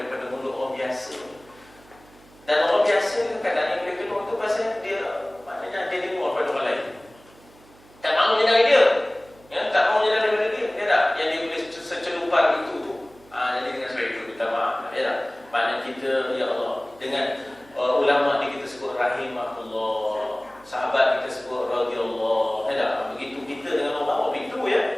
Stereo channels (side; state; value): right; noise; hum, 26 dB below the sound